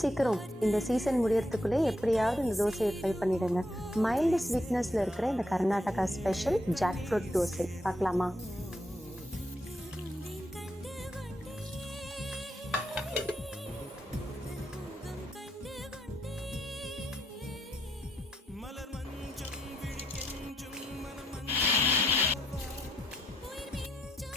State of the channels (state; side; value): normal; both; correlation 0.77